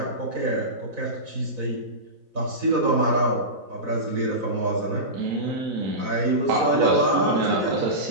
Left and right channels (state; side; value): late; left; 4.0 ms